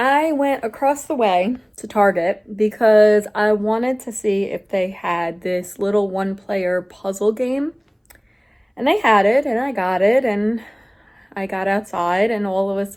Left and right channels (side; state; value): both; identical; correlation 1.00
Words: went across the way to Target because I wanted to see if they had this little one-player puzzle game, and they had it, and I got it, and I got outside, and all of a